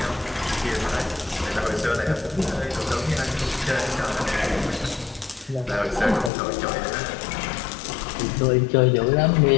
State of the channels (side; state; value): right; drops out; at 6.3 s